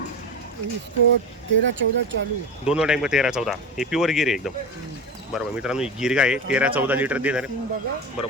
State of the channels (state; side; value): normal; both; correlation 0.25